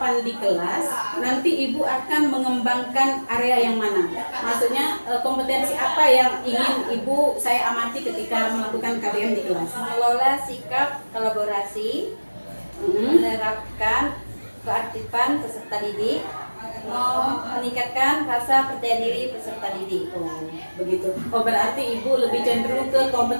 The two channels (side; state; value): both; inverted; correlation -1.00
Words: di kelas, nanti Ibu akan mengembangkan area yang mana? Maksudnya kompetensi apa yang ingin Ibu saya amati ketika melakukan KBM di kelas? Mengelola sikap kolaborasi, menerapkan keaktifan peserta didik, meningkatkan rasa percaya diri peserta didik. Begitu. Berarti Ibu lebih cenderung ke